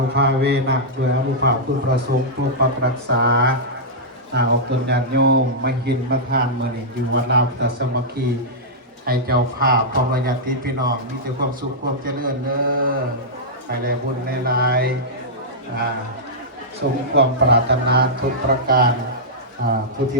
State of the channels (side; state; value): both; normal; correlation -0.10